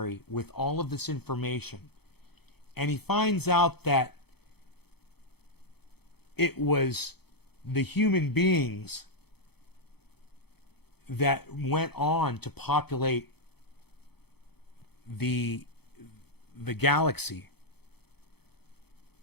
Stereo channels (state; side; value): late; right; 0.97 ms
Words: with all of this information, and he finds out that it was the human beings that went on to populate the galaxy.